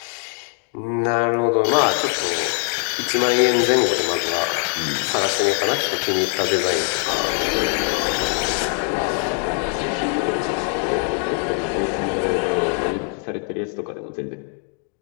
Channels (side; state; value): right; quieter; 36.4 dB